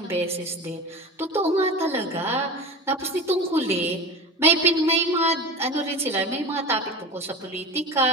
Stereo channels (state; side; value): normal; both; correlation 0.30